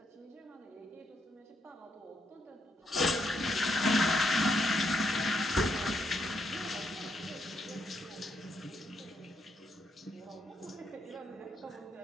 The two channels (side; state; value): both; normal; correlation 0.77